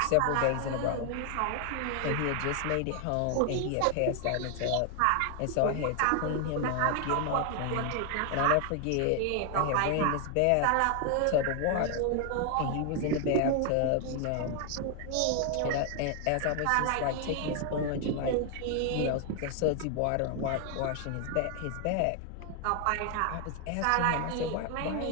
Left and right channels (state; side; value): different; both; correlation 0.00